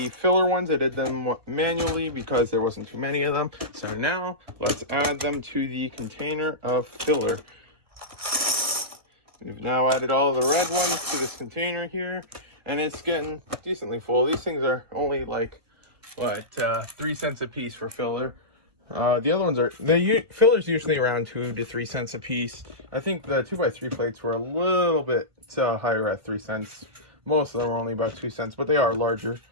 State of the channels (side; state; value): left; late; 1.5 ms